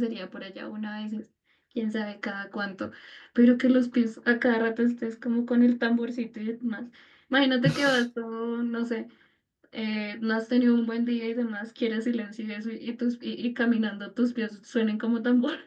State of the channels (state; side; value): identical; both; correlation 1.00